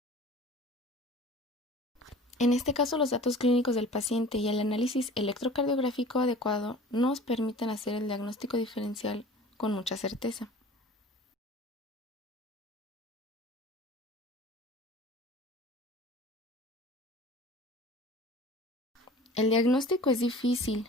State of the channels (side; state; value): both; normal; correlation 0.43